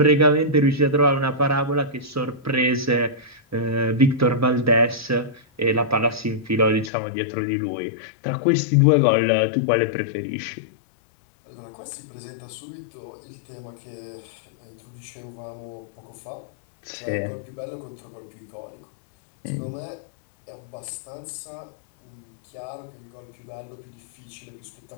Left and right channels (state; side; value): drops out; right; at 6.9 s